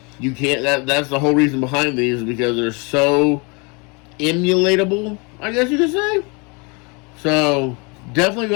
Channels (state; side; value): quieter; right; 30.4 dB